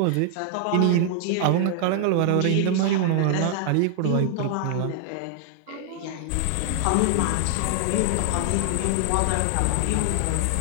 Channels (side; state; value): both; different; correlation 0.00